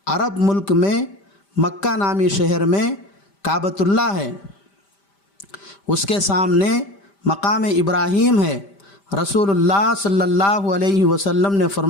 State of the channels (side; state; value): right; late; 5.1 ms